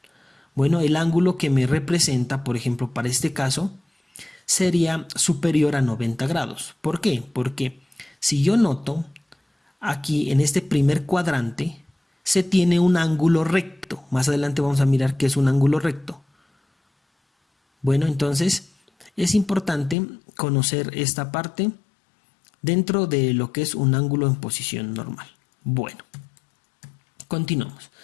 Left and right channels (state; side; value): drops out; right; at 20.0 s